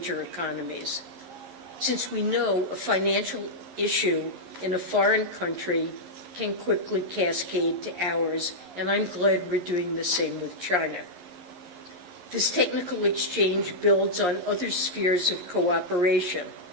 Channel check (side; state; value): left; late; 11 ms